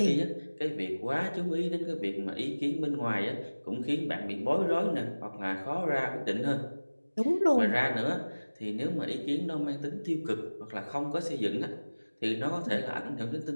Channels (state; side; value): inverted; both; correlation -1.00